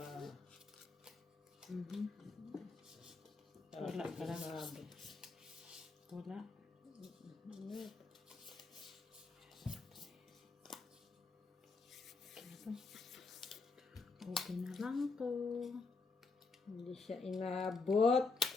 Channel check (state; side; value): quieter; right; 4.1 dB